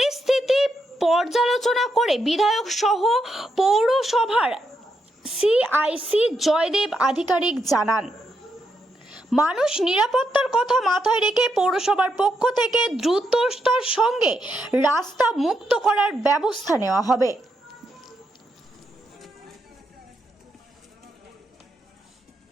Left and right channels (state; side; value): normal; both; correlation 0.81